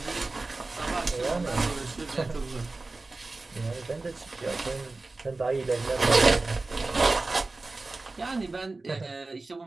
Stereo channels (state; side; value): quieter; left; 3.4 dB